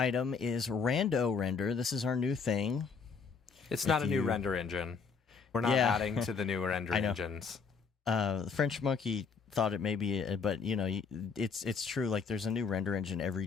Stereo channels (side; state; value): right; quieter; 5.4 dB